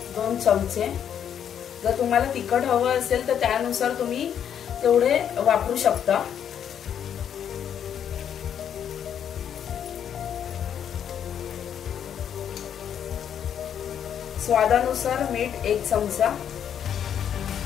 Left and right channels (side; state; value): right; quieter; 8.9 dB